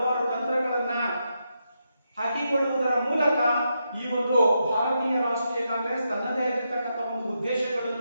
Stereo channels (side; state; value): both; inverted; correlation -0.84